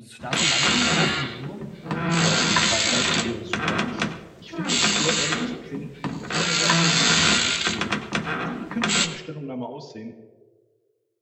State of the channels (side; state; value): both; identical; correlation 1.00